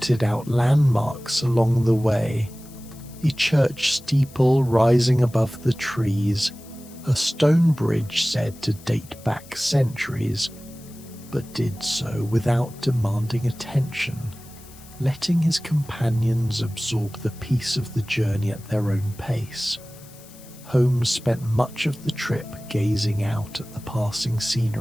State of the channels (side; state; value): left; noise; hiss, 22 dB below the sound